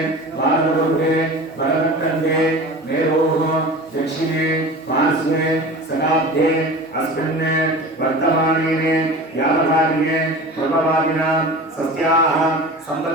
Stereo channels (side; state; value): both; normal; correlation 0.35